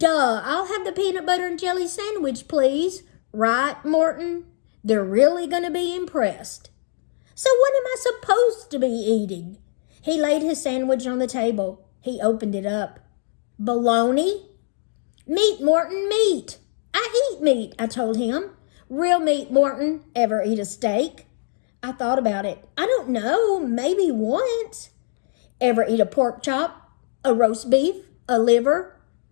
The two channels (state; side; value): silent; right; digital silence